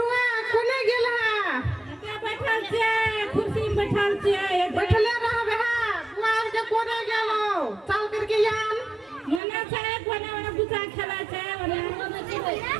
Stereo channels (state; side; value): drops out; left; at 9.4 s